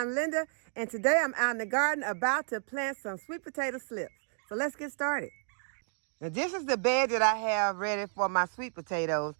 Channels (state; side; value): silent; left; 57 dB below the other